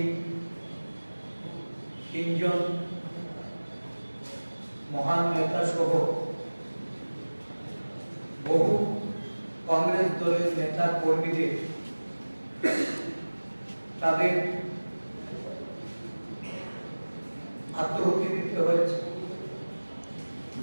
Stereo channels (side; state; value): both; inverted; correlation -1.00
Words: তিনজন মহান নেতা সহ বহু কংগ্রেস দলের নেতা কর্মীদের তাদের আত্মহত্যা দিতে হয়েছে,